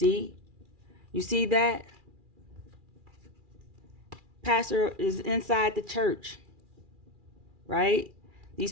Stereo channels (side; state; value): left; late; 2.4 ms